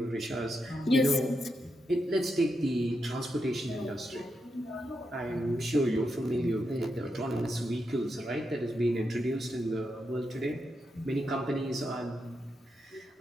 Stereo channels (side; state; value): both; normal; correlation 0.85